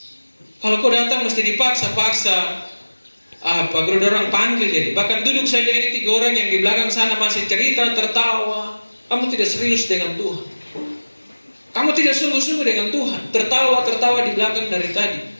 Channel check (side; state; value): both; inverted; correlation -1.00